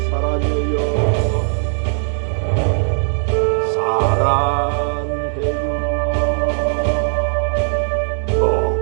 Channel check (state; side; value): silent; left; digital silence